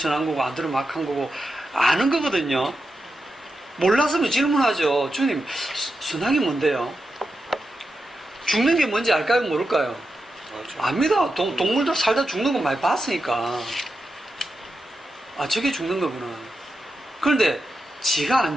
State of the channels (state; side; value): normal; both; correlation 0.88